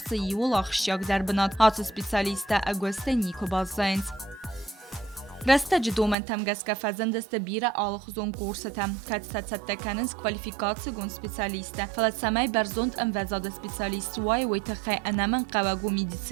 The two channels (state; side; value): drops out; left; at 6.2 s